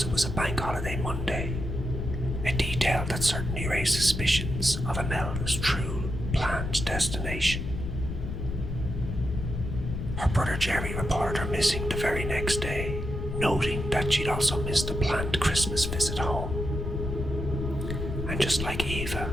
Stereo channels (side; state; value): left; noise; rumble, 4 dB below the sound